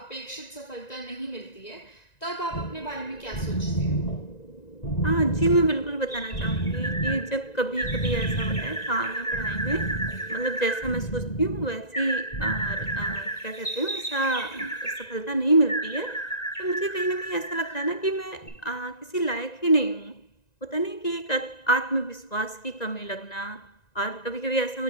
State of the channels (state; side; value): late; right; 1.9 ms